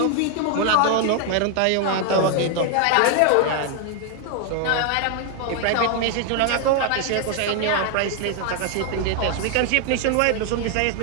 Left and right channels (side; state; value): both; different; correlation 0.00